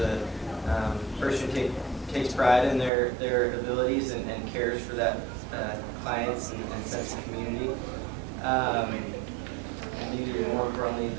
person who takes pride in their abilities and cares for that clients and sense of community. And maybe more importantly,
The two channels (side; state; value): left; drops out; at 2.9 s